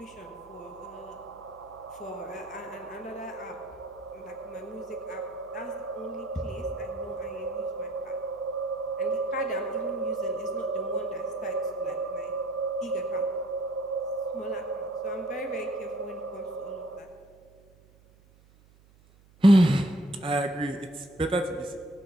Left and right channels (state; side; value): noise; right; hum, 27 dB below the sound